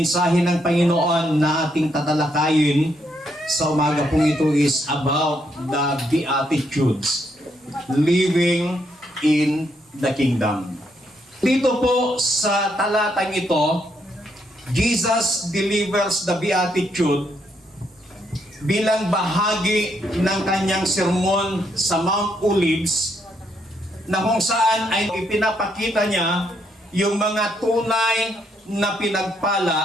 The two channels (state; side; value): normal; both; correlation 0.75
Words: ng Panginoon na ating tatalakayin sa umaga pong ito is about the Beatitudes, living in the kingdom. Dito po sa talatang ito, Jesus delivers the Beatitude bilang bahagi ng kanyang sermon sa Mount Olives, na kung saan ay ipinapakita niya yung mga tunay na